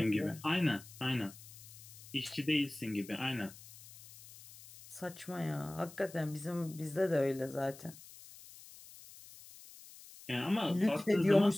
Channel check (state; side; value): noise; left; hiss, 18 dB below the sound